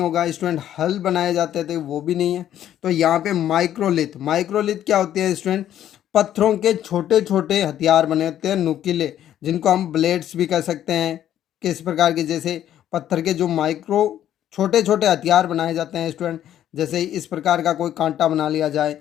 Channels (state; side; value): quieter; right; 11.3 dB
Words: स्टूडेंट। हल बनाए जाते थे, वो भी नहीं है। तो यहाँ पे माइक्रोलिथ, माइक्रोलिथ क्या होती है स्टूडेंट, पत्थरों के छोटे छोटे हथियार बने होते हैं नुकीले, जिनको हम ब्लेड्स भी कह सकते हैं। किस प्रकार के, जैसे पत्थर के जो माइक्रो छोटे छोटे हथियार बनाए जाते हैं स्टूडेंट, जैसे इस प्रकार का कोई कांटा बना लिया जाए